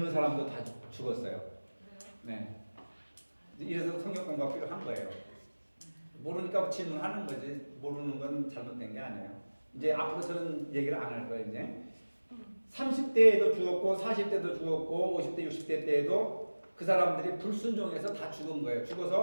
사람도 다 죽었어요. 네. 이래서 성경 공부가 필요한 거예요. 모르니까 질문하는 거지. 모르는 건 잘못된 게 아니에요. 이제 앞으로 저는 얘기를 안 할 거예요. 이제 30대에도 죽었고 40대도 죽었고 50대 60대 때에도 그 사람들이 불순종해서 다 죽은 거예요.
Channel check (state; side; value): inverted; both; correlation -1.00